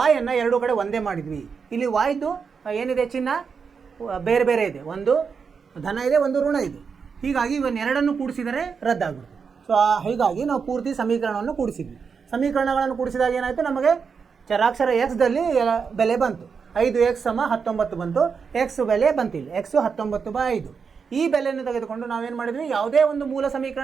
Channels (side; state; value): left; quieter; 5.8 dB